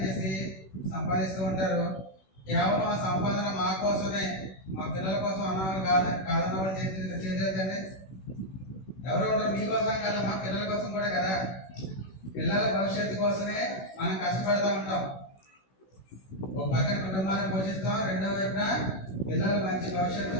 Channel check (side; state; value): right; late; 16 ms